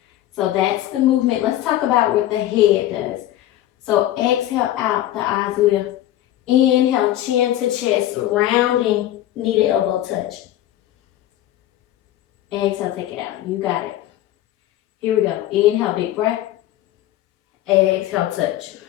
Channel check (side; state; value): right; quieter; 13.6 dB